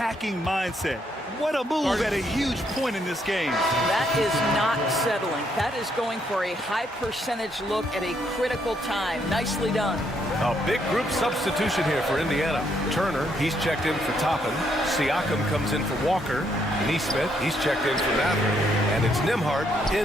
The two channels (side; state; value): both; normal; correlation 0.73